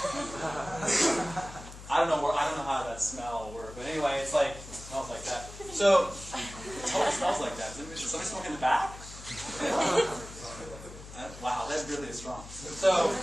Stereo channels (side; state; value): left; noise; hum, 15 dB below the sound